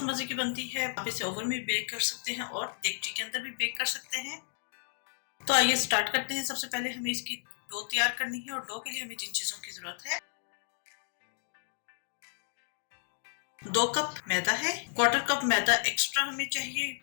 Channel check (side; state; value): right; silent; digital silence